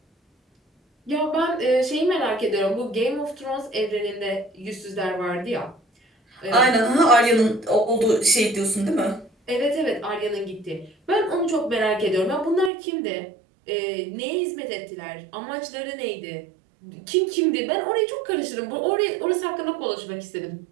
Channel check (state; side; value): drops out; left; at 12.7 s